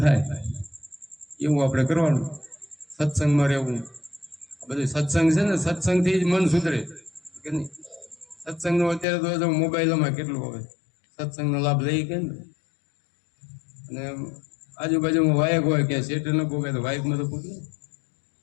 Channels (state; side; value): drops out; right; at 9.1 s